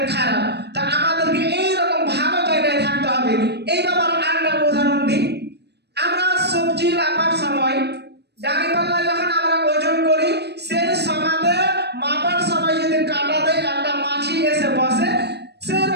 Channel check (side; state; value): left; late; 0.48 ms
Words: খারাপ। তা আমাদেরকে এইরকম ভালো জায়গায় থাকতে হবে। এই ব্যাপারে আরেকটা উদাহরণ দিই। আমরা সবজি মাপার সময় দাঁড়িপাল্লা যখন আমরা ওজন করি, সেই সমাতে মাপার সময় যদি কাঁটাতে একটা মাছি এসে বসে,